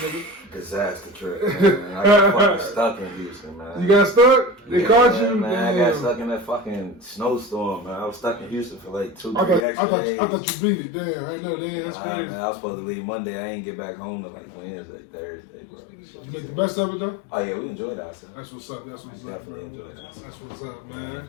Disaster trip, man. I got fucking stuck in Houston, man. You got stuck? They caught you? Man, I got stuck in that fucking snowstorm, man. I was stuck in Houston for like 2-3 extra days. I thought you beat it. Damn, I know, damn, that's crazy. Man, I was supposed to leave Monday. I ain't get back home till like Wednesday, Thursday, bro. You make the best of it, though? Oh, yeah, we enjoyed ourselves. That's what's up. That's what's up, Definitely bro. enjoyed ourselves. That's what's up,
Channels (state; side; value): drops out; right; at 9.7 s